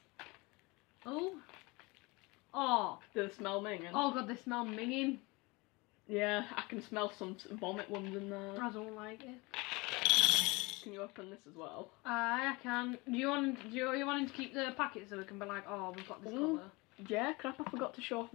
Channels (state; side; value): quieter; right; 25.0 dB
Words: Oh. Oh. Do they smell minging? Oh god, they smell minging. Yeah, I can smell some vomit ones in there. I don't like it. Can you open this as well? I can. Do you want to keep the packet so we can be like, oh, we've got this colour? Yeah, crap, I forgot to show off